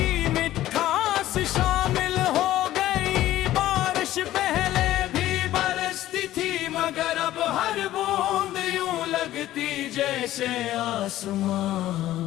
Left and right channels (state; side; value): quieter; right; 14.3 dB